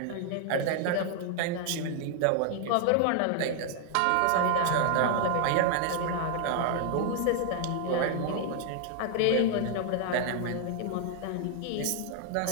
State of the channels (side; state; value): both; different; correlation 0.00